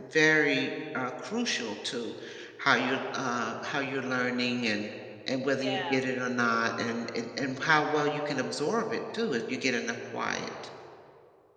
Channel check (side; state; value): both; identical; correlation 1.00